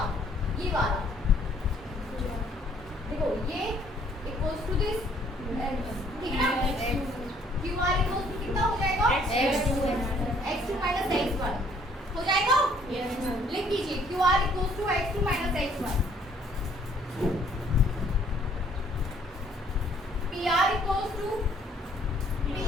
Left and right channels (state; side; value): normal; both; correlation 0.62